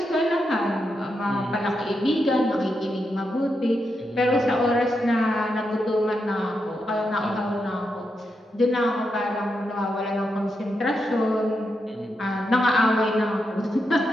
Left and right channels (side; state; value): both; normal; correlation 0.85